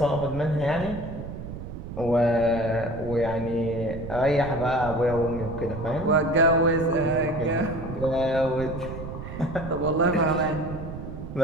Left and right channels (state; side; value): noise; right; rumble, 9 dB below the sound